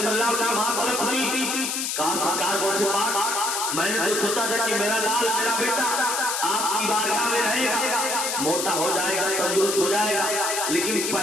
کی ماں طلب تھی، کہا سرکار غوث پاک میں نے تو سوچا تھا کہ میرا لال میرا بیٹا آپ کی بارگاہ میں رہے گا، موٹا ہو جائے گا، تندرست ہو جائے گا، لیکن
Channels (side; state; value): left; noise; hiss, 1 dB below the sound